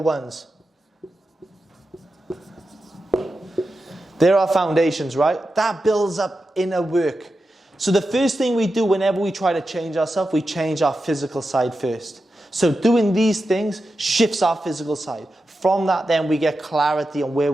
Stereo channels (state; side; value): normal; both; correlation 0.90